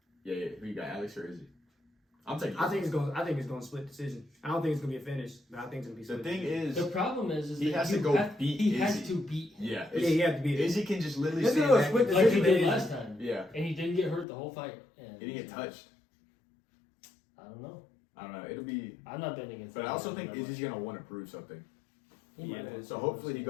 Yeah. Who you got, Alex or Izzy? I'm taking I think it's going to split decision. I don't think it's going to be a finish, but I think it's going to be The split. thing is, The problem is he that has you to go have, beat He Izzy. has to beat him. Yeah. Yeah, you have to beat it. Izzy can just literally Let's stand do a back. split Like he decision. did last time. Yeah. And he didn't get hurt the whole fight. And He didn't get touched. I don't know. I don't know. It'll be. I'm not betting against But I also him. think Izzy's gonna want to prove something. He might. Yeah. So hopefully he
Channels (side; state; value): right; drops out; at 14.2 s